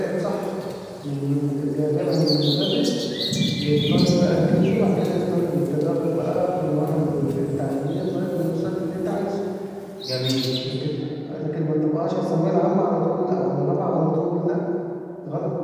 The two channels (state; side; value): identical; both; correlation 1.00